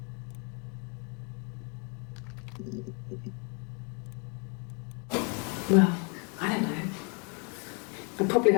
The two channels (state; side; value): quieter; right; 36.3 dB